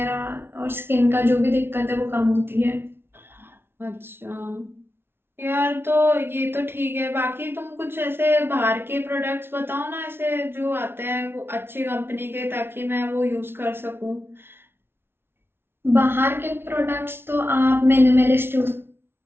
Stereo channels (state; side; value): late; left; 0.11 ms